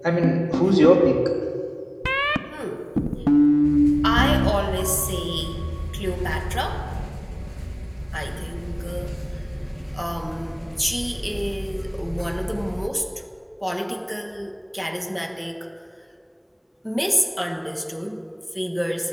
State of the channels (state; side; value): identical; both; correlation 1.00